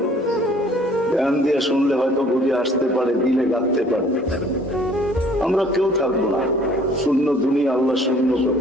ধ্যান দিয়ে শুনলে হয়তো বুঝে আসতে পারে, দিলে গাঁথতে পারে। আমরা কেউ থাকবো না, শূন্য দুনিয়া আল্লাহ শূন্য করে,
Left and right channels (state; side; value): normal; both; correlation 0.56